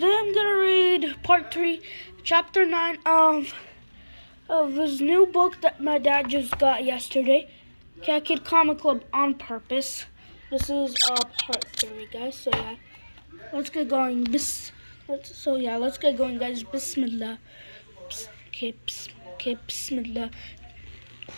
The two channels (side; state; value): both; inverted; correlation -1.00